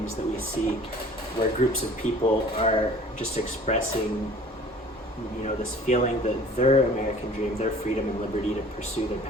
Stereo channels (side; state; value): both; normal; correlation 0.48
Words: that we see where groups of people are just expressing this feeling that their American dream, their freedom and liberty to pursue their